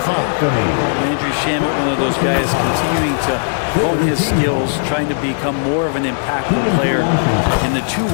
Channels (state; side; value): silent; right; digital silence